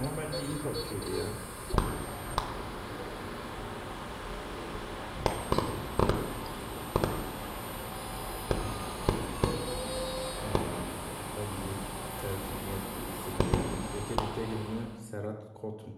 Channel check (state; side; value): identical; both; correlation 1.00